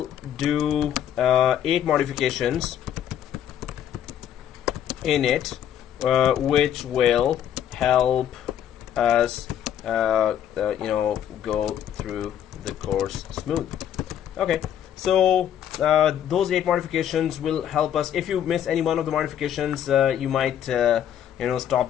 do 8 modifications in it, which will help us go through the course smooth. Okay. So those 8 modifications will help us. If you miss any one of the modifications, you might stop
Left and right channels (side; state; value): right; quieter; 10.0 dB